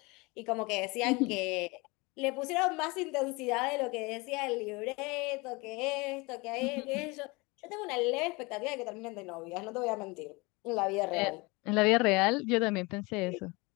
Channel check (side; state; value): right; quieter; 25.7 dB